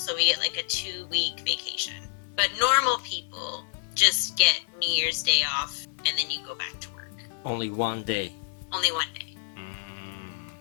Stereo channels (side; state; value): right; silent; 59 dB below the other